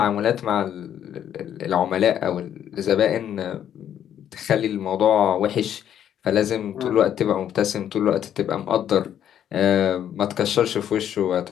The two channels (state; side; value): quieter; right; 10.0 dB